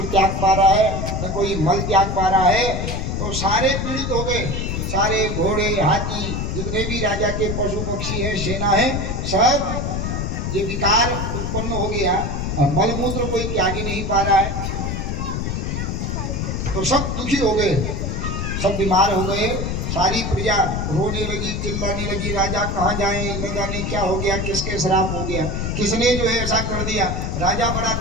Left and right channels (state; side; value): noise; left; rumble, 2 dB below the sound